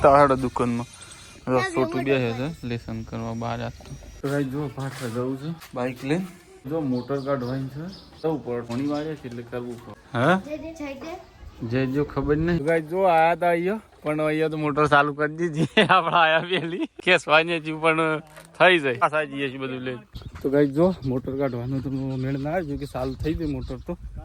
આવડે દુકાનમાં. છોટું બે છે લેસન કરવા બહાર આપતો. તો ગાઈઝ જો પાછળ જવું છે બાઇક લઈને. જો મોટર કાઢવાની છે, જવું પડે, ઘણી વાડીએ છે એટલે કરવું પડે. હા જે જો ખબર નહીં ગાઈઝ જો આયા હતા અહીંયા, પણ અહીંયા તો મોટર ચાલુ કરી દીધી આપણે આયા પેલી ખેસવાની હતી પણ થઈ જાય પાછા જઈએ છીએ બધું લઈને. તો ગાઈઝ જો મોટર કાઢવાનું તો મેળ ના આવ્યો કે ચાલુ થઈ ગઈ મોટર, તો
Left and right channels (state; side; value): identical; both; correlation 1.00